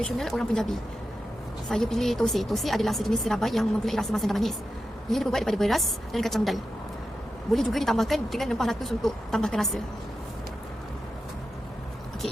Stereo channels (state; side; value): normal; both; correlation 0.90